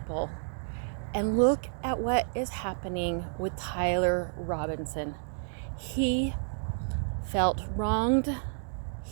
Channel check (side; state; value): left; silent; digital silence